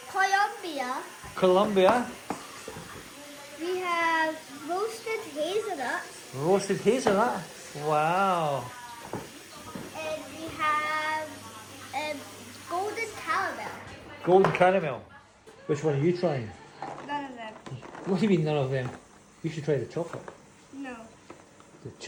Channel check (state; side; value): identical; both; correlation 1.00